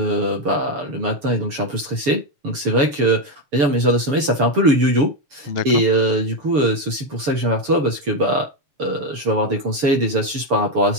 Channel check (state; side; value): late; left; 7.0 ms